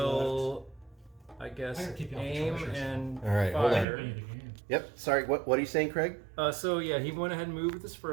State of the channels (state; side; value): drops out; left; at 3.9 s